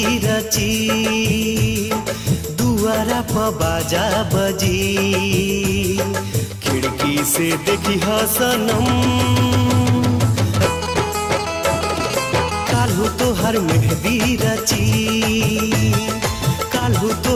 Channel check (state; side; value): identical; both; correlation 1.00